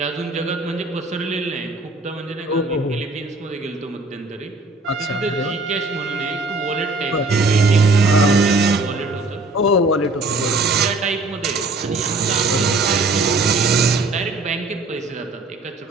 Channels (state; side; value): quieter; left; 3.2 dB